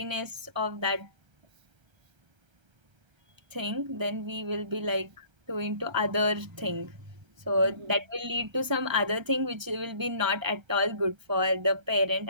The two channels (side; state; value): left; late; 1.3 ms